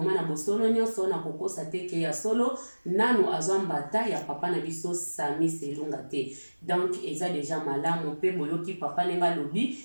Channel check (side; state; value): both; inverted; correlation -1.00